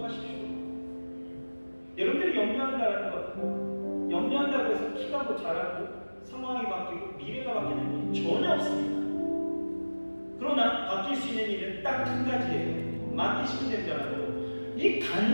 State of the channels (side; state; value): both; inverted; correlation -1.00